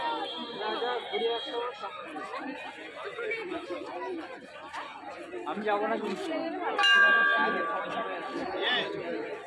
আমি যাবো না কিন্তু।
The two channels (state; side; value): identical; both; correlation 1.00